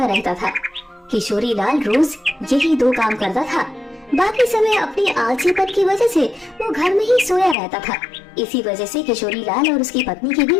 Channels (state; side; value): drops out; right; at 7.6 s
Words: रहता था। किशोरी लाल रोज यही दो काम करता था। बाकी समय अपनी आलसीपन की वजह से वो घर में ही सोया रहता था। इसी वजह से किशोरी लाल और उसकी पत्नी के